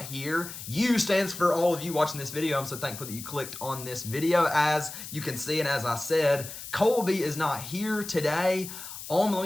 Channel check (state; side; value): noise; left; hiss, 11 dB below the sound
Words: here. U stands for all of you watching this video. I'm so thankful that you clicked on this video. As you can see, and as I said, Colby is not here today. Let